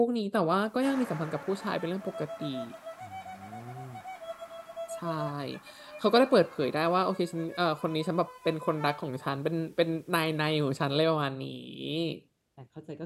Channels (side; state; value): both; identical; correlation 1.00